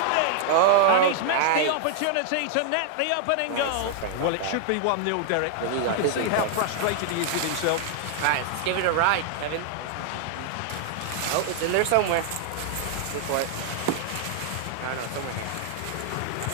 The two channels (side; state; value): both; different; correlation 0.00